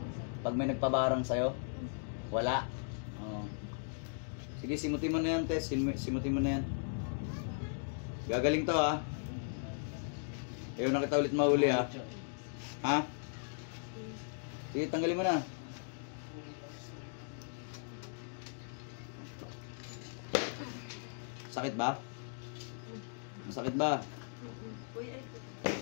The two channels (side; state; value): right; silent; digital silence